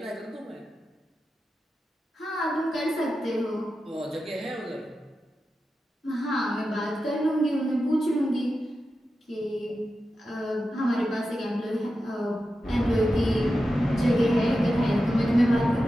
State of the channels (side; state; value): both; normal; correlation 0.91